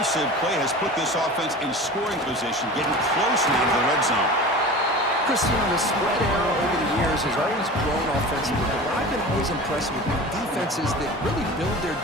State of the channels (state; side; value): normal; both; correlation 0.35